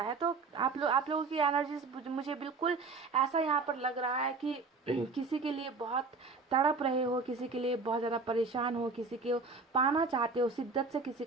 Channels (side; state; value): left; quieter; 4.2 dB